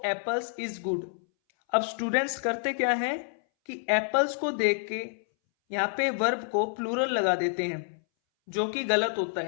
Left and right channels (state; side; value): silent; right; 59 dB below the other